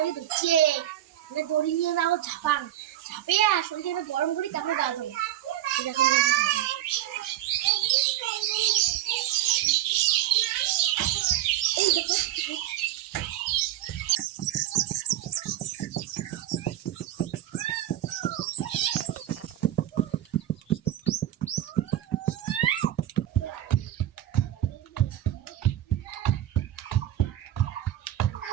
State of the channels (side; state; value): left; quieter; 12.9 dB